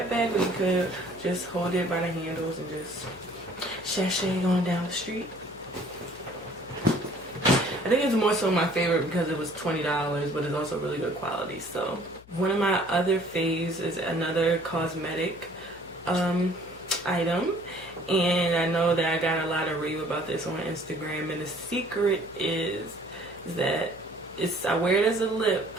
bag, or you could just hold it by the handles and just sashay on down the street. I think it's more so my favorite because it was $20, but it's also really good quality. So one of my other faves is another cosmetic item, and I know that I got a lot of rave about this on Instagram, and the secret is that I wear it as a lip,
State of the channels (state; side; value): noise; left; hum, 23 dB below the sound